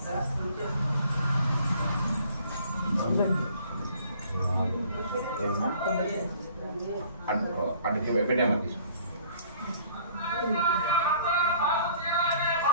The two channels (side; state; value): both; inverted; correlation -0.55